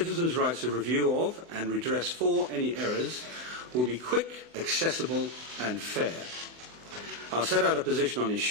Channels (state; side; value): late; left; 24 ms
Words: rights of review of and redress for any errors will be quick, accessible and fair. I'll set out a position on